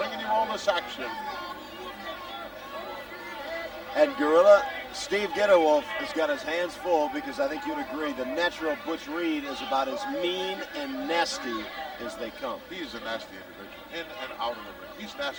you all this action. And Gorilla, Steve Gatorwolf has got his hands full because I think you'd agree the natural Butch Reed is about as mean and nasty as they come. He's a nasty individual, in and out of the ring. He's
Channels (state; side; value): identical; both; correlation 1.00